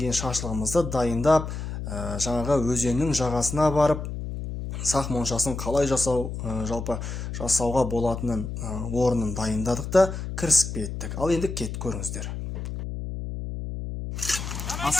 шашлығымызды дайындап, жаңағы өзеннің жағасына барып, сақ моншасын қалай жалпы жасауға болатынын орнын дайындадық та кірісіп кеттік. Ал енді кет көріңіздер.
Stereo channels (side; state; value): left; noise; hum, 6 dB below the sound